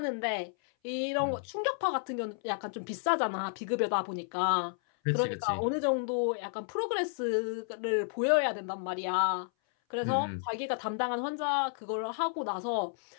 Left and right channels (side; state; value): right; silent; 57 dB below the other